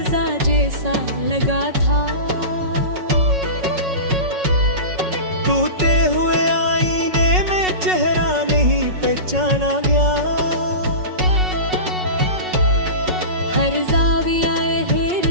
जैसा लगा था। टूटे हुए आईने में चेहरा नहीं पहचाना गया। हर ज़ाविया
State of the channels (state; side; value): late; left; 5.4 ms